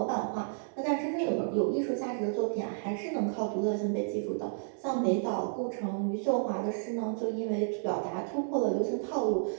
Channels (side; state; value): left; silent; digital silence